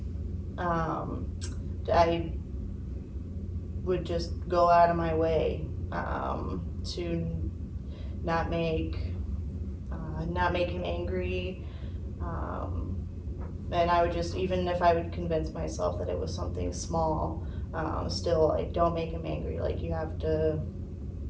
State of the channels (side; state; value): both; identical; correlation 1.00